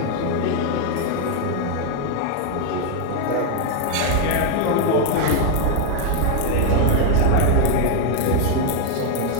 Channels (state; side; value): different; both; correlation 0.00